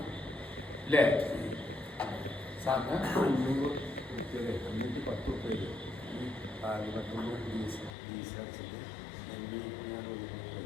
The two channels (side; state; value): right; drops out; at 8.0 s